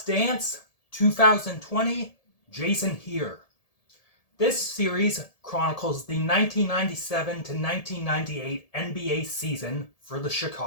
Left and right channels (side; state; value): right; late; 1.7 ms